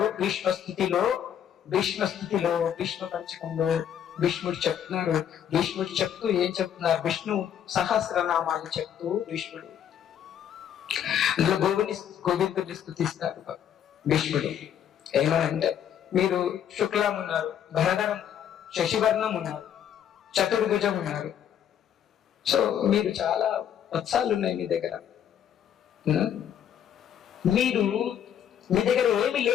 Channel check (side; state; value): right; quieter; 9.4 dB